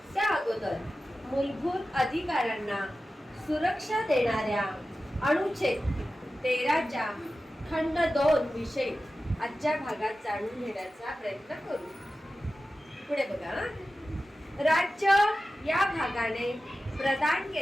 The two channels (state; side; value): normal; both; correlation 0.94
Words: त्या अगोदर मूलभूत अधिकारांना सुरक्षा देणाऱ्या अनुच्छेद 13च्या खंड 2 विषयी आजच्या भागात जाणून घेण्याचा प्रयत्न करू. पुढे बघा. राज्य या भागाने प्रदान